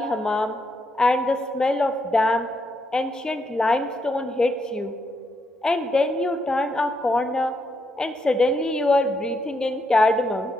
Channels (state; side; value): normal; both; correlation 0.79